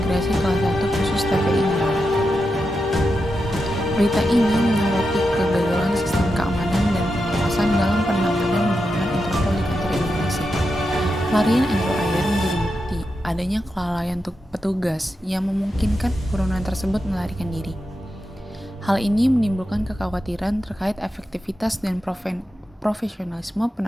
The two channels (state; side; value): normal; both; correlation 0.88